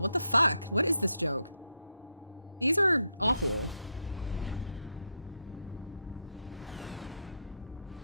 What the fuck? What is this joke? These are awful.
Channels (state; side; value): inverted; both; correlation -0.80